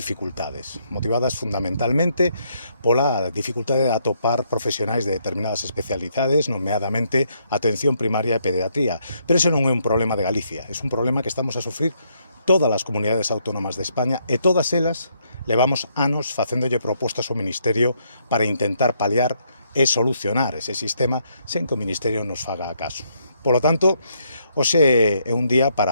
motivadas fundamentalmente pola dificultade de atopar profesionais de determinadas especialidades, nomeadamente atención primaria e pediatría. Pero ese non é un problema de Galicia, é un problema que estamos a sufrir todas as comunidades autónomas de España e todas elas levamos anos facéndolle propostas ao Ministerio para intentar paliar e solucionar ese sistema sen que o Ministerio nos faga caso. Polo tanto, hoxe é un día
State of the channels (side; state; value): both; inverted; correlation -0.74